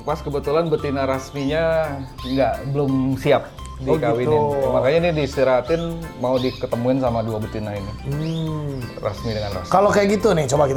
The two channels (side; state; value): both; identical; correlation 1.00